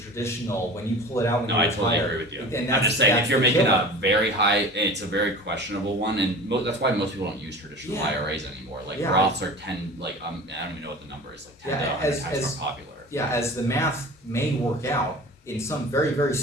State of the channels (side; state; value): both; normal; correlation 0.38